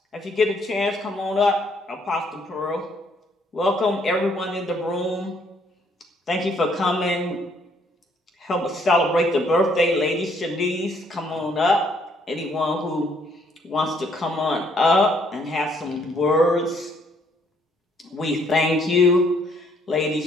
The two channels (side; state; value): both; normal; correlation 0.67